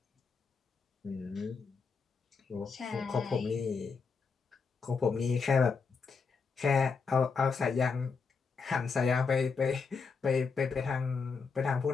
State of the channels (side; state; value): right; quieter; 5.1 dB